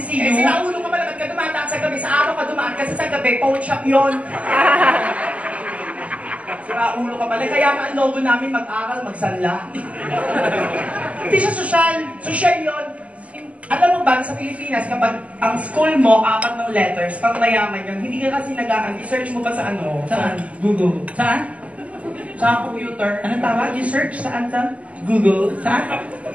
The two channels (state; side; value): late; left; 0.068 ms